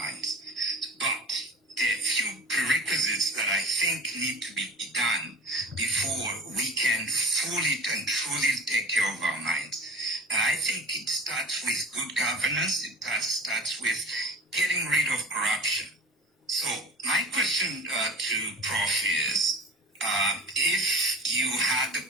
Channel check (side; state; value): both; normal; correlation 0.39